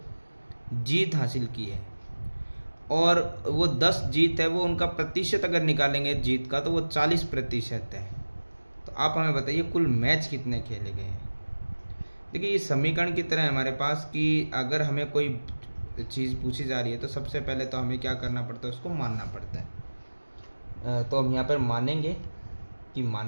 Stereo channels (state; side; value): inverted; both; correlation -1.00